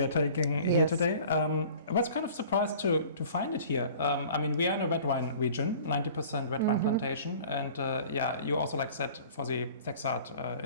are taking here today. I was kind of surprised to find it here. I mean, we are in a red wine region, 90% red wine plantation, and yeah, you also like said for the Szekszárd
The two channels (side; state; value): both; inverted; correlation -0.46